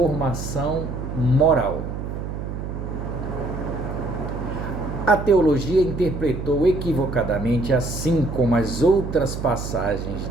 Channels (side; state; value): right; noise; hum, 6 dB below the sound